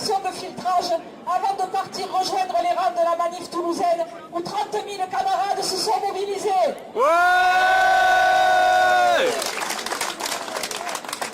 de filtrage avant de partir rejoindre les rangs de la manif toulousaine où 30 000 camarades se sont mobilisés. Ouais!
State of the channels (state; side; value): identical; both; correlation 1.00